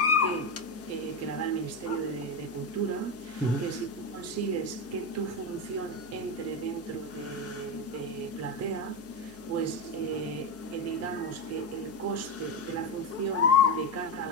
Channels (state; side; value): noise; right; hum, 21 dB below the sound